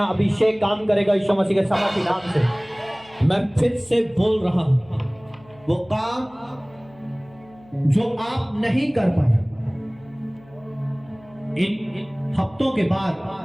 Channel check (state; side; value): noise; left; hum, 26 dB below the sound